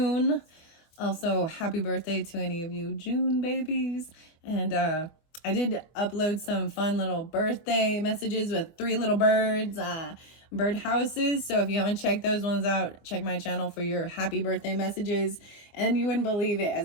Also, happy birthday to any of you June babies. And I did upload some fun little birthday messages with 3 little birds, bird houses. So if you haven't checked those ones out, check my channel for your happy birthday messages. And you wouldn't believe it,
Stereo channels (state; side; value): late; right; 24 ms